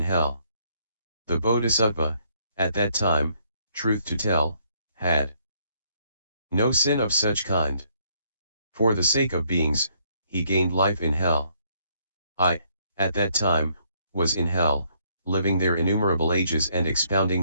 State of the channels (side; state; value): both; inverted; correlation -0.69